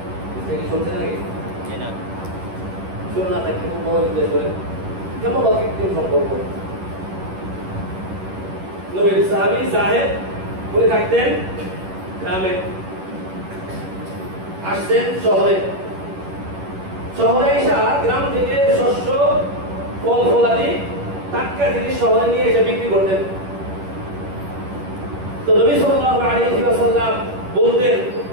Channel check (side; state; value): left; late; 11 ms